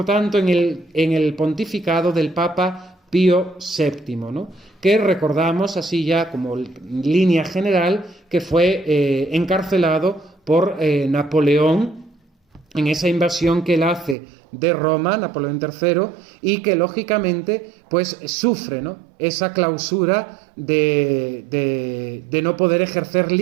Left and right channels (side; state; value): left; drops out; at 14.2 s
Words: tanto, en el pontificado del Papa Pío VII, ¿no?, que recordamos, así ya como línea general, que fue encarcelado por Napoleón en esa invasión que él hace de Roma, Napoleón III, y que lógicamente pues sufre, ¿no?, esa clausura de no poder ejercer